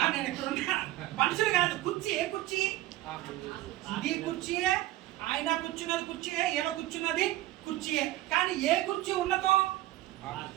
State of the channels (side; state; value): left; quieter; 16.1 dB